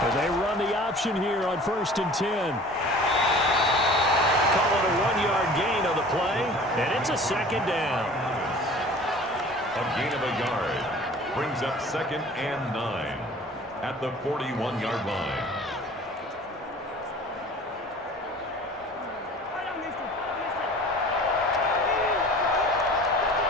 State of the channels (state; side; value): normal; both; correlation 0.45